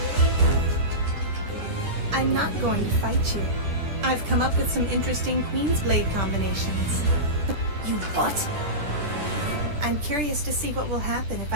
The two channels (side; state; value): left; late; 10 ms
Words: I'm not going to fight you. I've come up with some interesting Queen's Blade combinations. You what? I'm curious to see what will happen if